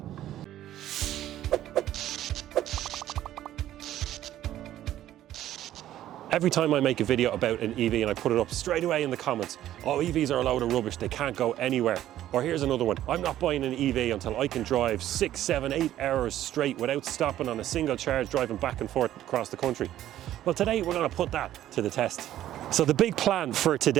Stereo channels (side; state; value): left; quieter; 12.7 dB